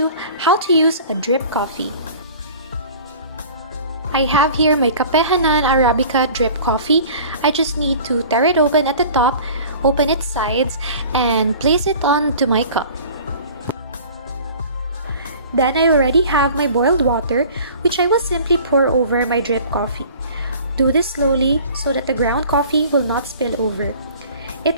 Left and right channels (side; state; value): both; inverted; correlation -0.45